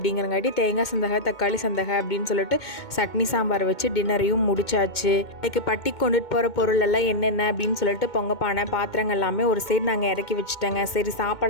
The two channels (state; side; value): late; right; 2.2 ms